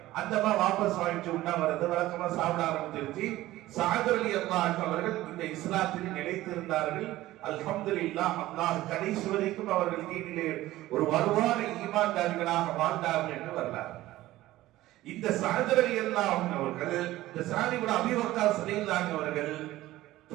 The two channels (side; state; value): left; quieter; 16.2 dB